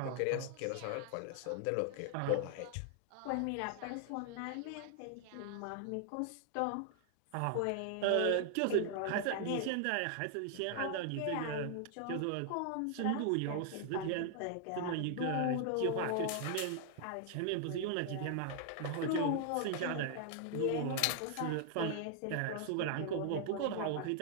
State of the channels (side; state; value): both; different; correlation 0.00